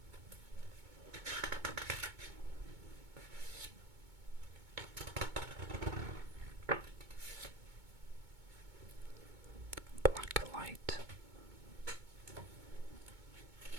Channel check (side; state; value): left; late; 2.2 ms